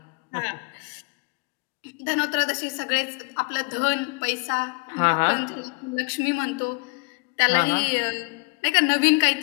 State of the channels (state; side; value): quieter; right; 31.1 dB